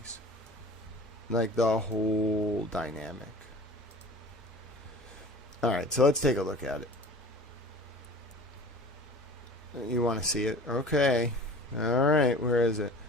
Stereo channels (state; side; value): normal; both; correlation 0.41